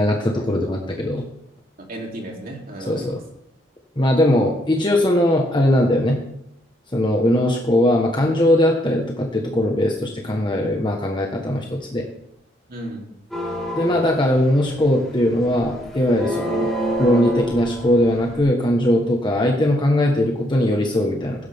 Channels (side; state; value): both; normal; correlation 0.73